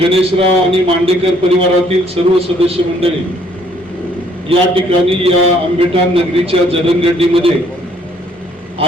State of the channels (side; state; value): both; normal; correlation 0.64